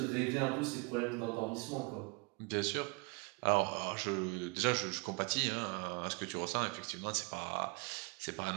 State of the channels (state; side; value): quieter; left; 30.2 dB